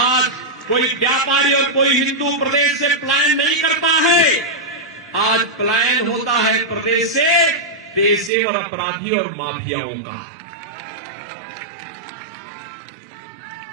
कोई व्यापारी और कोई हिंदू प्रदेश से पलायन नहीं करता है, आज पलायन होता है प्रदेश से पेशेवर अपराधी और माफियाओं का।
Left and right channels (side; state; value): left; drops out; at 8.3 s